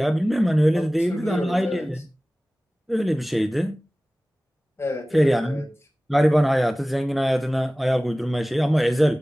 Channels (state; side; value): normal; both; correlation 0.98